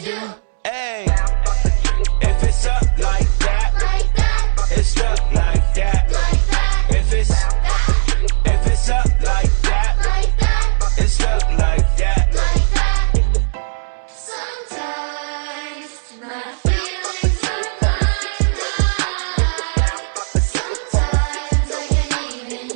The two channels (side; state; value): left; silent; digital silence